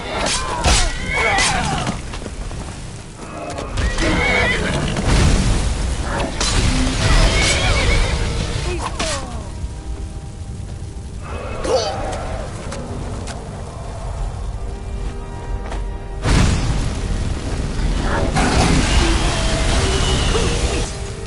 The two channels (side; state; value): both; identical; correlation 1.00